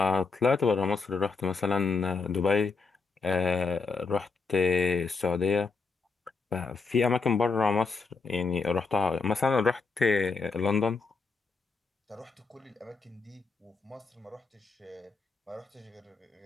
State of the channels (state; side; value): quieter; right; 4.4 dB